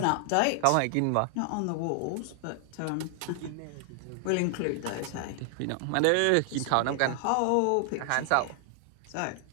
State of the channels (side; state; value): both; different; correlation 0.00